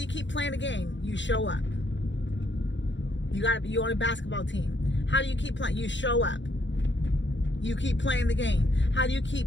you keep playing the game? You show up. You on a basketball team. How do you keep playing? You show up. You keep playing the game. How do you keep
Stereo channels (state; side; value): late; right; 0.53 ms